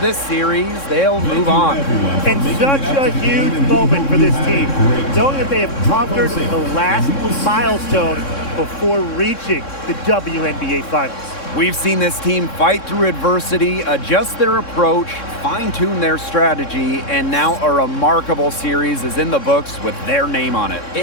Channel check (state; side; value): late; right; 3.6 ms